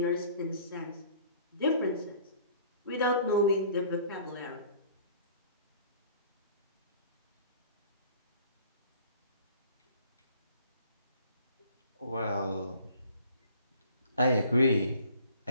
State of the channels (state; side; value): inverted; both; correlation -0.51